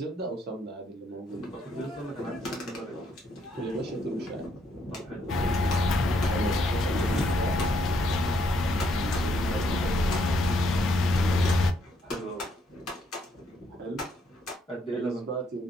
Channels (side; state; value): both; normal; correlation 0.73